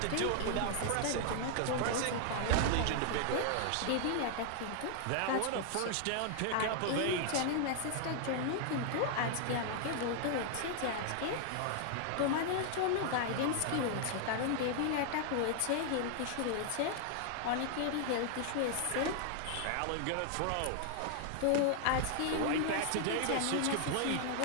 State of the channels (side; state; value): both; different; correlation 0.00